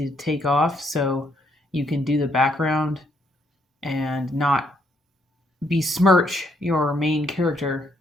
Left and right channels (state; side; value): normal; both; correlation 0.72